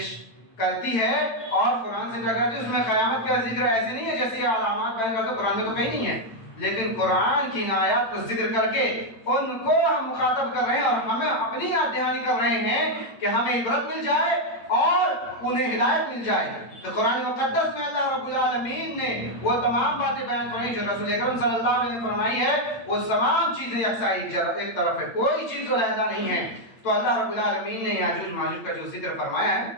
کرتی ہے اور قرآن سے ٹکراتی ہے، اس میں قیامت کا ذکر ایسے نہیں ہے جیسے یہ علامات بیان کرتے، قرآن میں تو کہیں نہیں ہے، لیکن قرآن کی آیات کو ذکر کر کے ان کو ہم مخاطب کر رہے ہیں اور ہمیں اپنی یاد دہانی کر رہے ہیں کہ ہمیں عبرت مل جائے اور انہیں ہدایت مل جائے۔ تو قرآن مقدس میں اللہ رب العالمین نے وہ تمام باتیں بیان فرمائی جو رسول اکرم صلی اللہ علیہ وسلم نے فرمائی ہے، وہ تمام چیزیں یکساں ایک طرف ہے، کوئی چیز علیحدہ نہیں ہے۔ تو اللہ رب العالمین نے یاجوج ماجوج کا جو ذکر فرمایا ہے،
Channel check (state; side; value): late; right; 9.0 ms